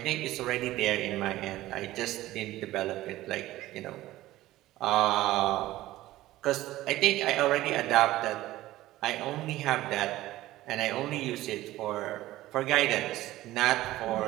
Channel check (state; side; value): quieter; left; 16.1 dB